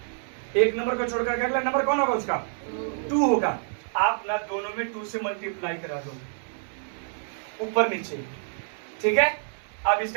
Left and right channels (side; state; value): left; silent; 60 dB below the other